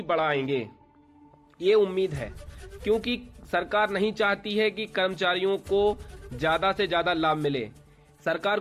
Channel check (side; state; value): both; identical; correlation 1.00